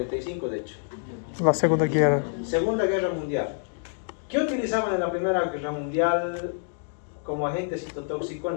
de hecho. La Segunda Guerra. Segunda Guerra Mundial. ¿Qué utilizaban en la Primera Guerra Mundial como agente citotóxico en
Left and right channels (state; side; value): silent; right; digital silence